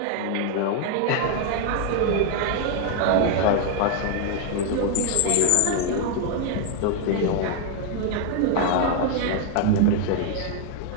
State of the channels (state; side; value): different; both; correlation 0.00